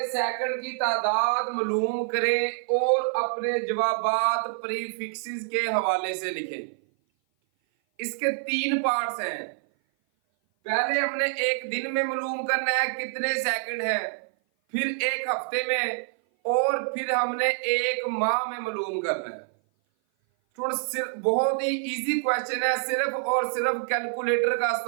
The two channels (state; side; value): silent; left; 56 dB below the other